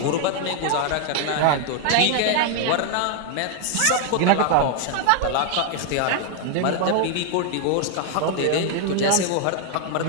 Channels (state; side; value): different; both; correlation 0.00